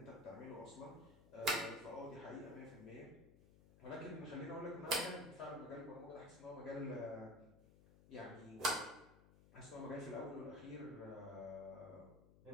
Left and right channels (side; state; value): left; noise; hum, 21 dB below the sound